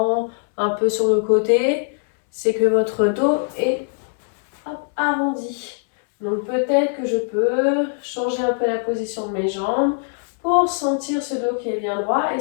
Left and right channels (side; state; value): right; silent; 65 dB below the other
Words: un peu sur le côté, c'est que votre dos est arrondi. Donc peut-être que je peux changer un peu la position de mes jambes pour sentir ce dos qui est bien droit et